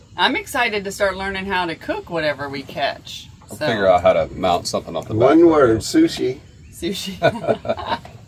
I'm excited to start learning how to cook whatever we catch. I'll So, figure out how to mount something off the back. One of it. word, sushi. sushi.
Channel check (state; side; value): identical; both; correlation 1.00